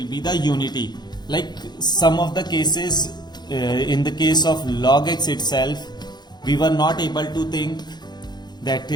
be the unity. Like some of the cases, in the case of log x itself, we were not able to think that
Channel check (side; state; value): right; late; 0.21 ms